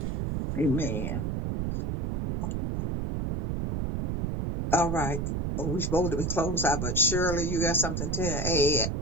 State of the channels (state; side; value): noise; right; rumble, 1 dB below the sound